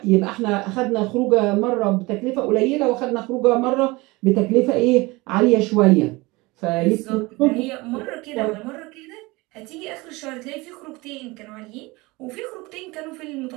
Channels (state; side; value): quieter; left; 23.0 dB